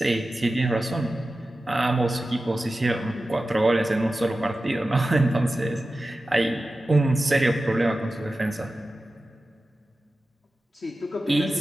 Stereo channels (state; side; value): normal; both; correlation 0.94